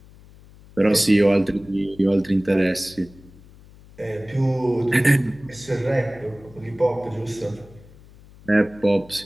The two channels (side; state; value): left; noise; hum, 23 dB below the sound